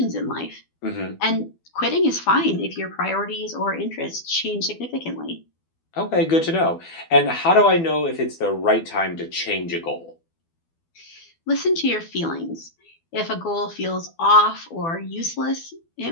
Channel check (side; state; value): right; late; 12 ms